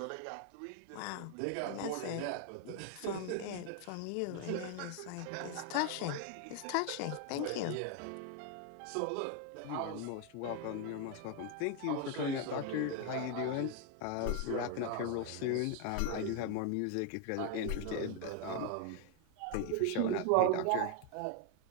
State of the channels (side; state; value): both; different; correlation 0.01